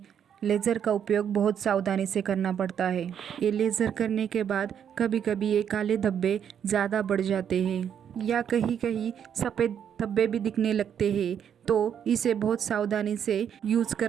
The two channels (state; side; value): quieter; left; 8.6 dB